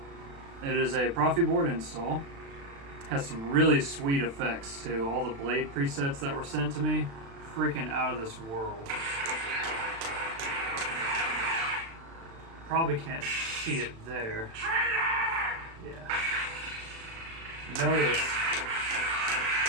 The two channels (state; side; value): late; left; 36 ms